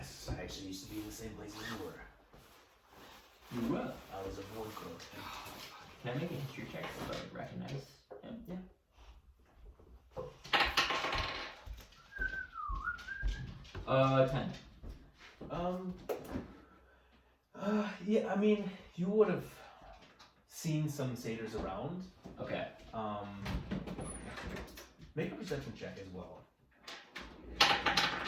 I actually used to be in the same place as you were. You were. I was a warcrow. Can I make a history check so I recognize him? Yeah. Uh, 10. Yeah, I mean, you would have seen some satyrs around. Okay. Make a perception check as well.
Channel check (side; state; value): both; identical; correlation 1.00